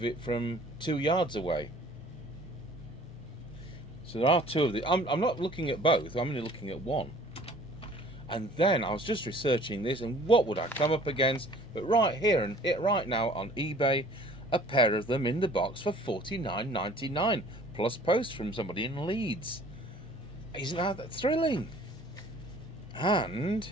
it from 2 yards away. So there are 2 of these. I'm not looking at both, I'm only looking at one. And then I was just researching this, and what would I come up against? But right here and right now on eBay, a pair of them in the box for $49.99 plus post from somebody in Leeds. Isn't that thrilling? And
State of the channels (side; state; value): left; noise; rumble, 27 dB below the sound